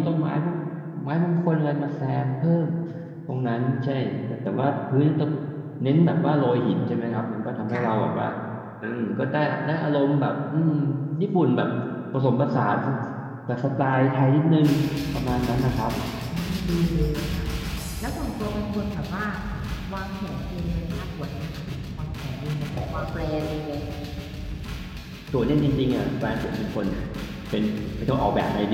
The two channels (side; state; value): both; identical; correlation 1.00